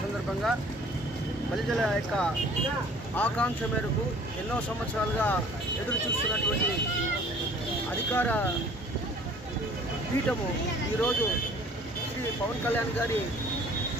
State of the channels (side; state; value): both; normal; correlation 0.52